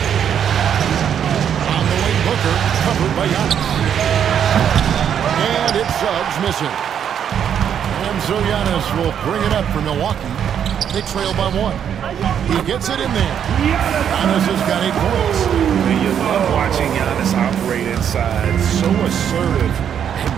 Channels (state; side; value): quieter; left; 8.7 dB